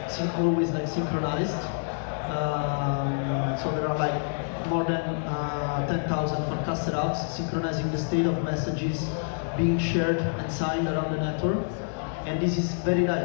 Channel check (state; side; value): silent; right; digital silence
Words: always like synchronized. So there are like more than 10,000 Farcaster apps synchronizing the state of messages being shared and signed around the network. And this is very